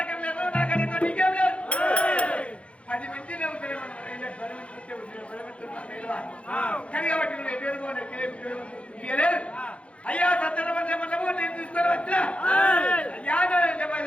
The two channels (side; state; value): right; late; 0.061 ms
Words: లేదు, నాకంటే ఎక్కువ నీకేం లేదు. 10 మంది నవ్వుతారు కానీ కాబట్టి నువ్వు ఎదురుకోలేదు. అయ్యా సత్యనమన్నము నేను తీసుకొని వచ్చిన అయ్యా